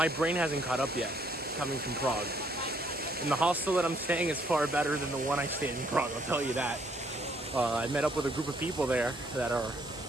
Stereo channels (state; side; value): normal; both; correlation 0.67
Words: brain hasn't caught up yet coming from Prague. And the hostel that I'm staying is far better than the one I stayed in Prague, I'll tell you that. I met up with a group of people there that are